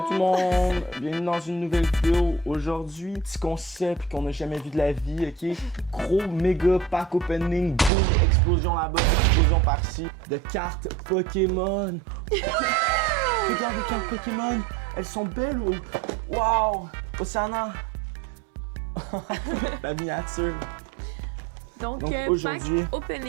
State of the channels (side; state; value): left; drops out; at 7.9 s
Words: tout le monde, bienvenue dans une nouvelle vidéo. Aujourd'hui, petit concept qu'on n'a jamais vu de la vie, ok? Gros méga pack opening, boom, explosion là-bas, explosion par-ci, de cartes Pokémon. Regarde les cartes Pokémon, elles sont belles ou... Wow! Océana! La miniature. Donc aujourd'hui, pack